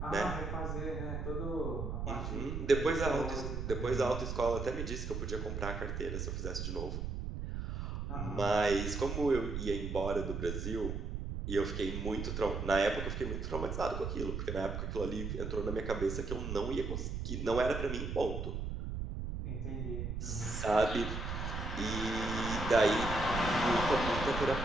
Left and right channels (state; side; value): noise; right; rumble, 4 dB below the sound